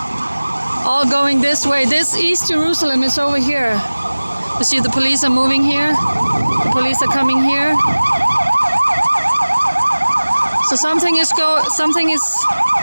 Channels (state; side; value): inverted; both; correlation -1.00